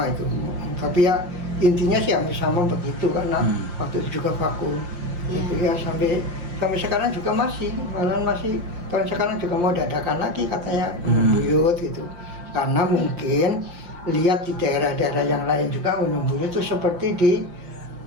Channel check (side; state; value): left; late; 5.7 ms